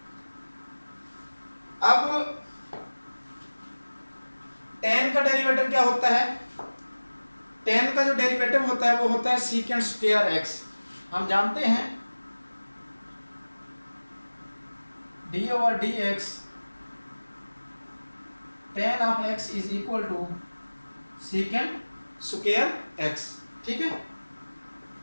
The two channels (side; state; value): both; inverted; correlation -1.00